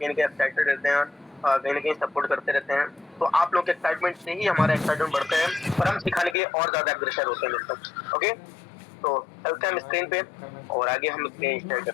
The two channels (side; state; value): right; drops out; at 6.4 s